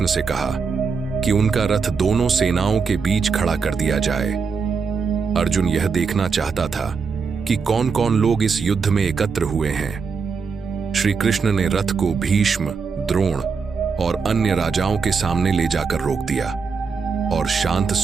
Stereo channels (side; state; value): left; quieter; 5.3 dB